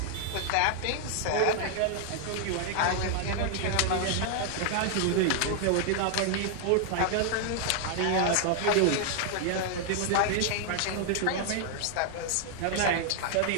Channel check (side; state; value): both; different; correlation 0.00